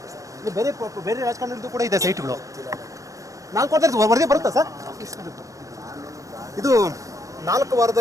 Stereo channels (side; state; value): left; late; 0.16 ms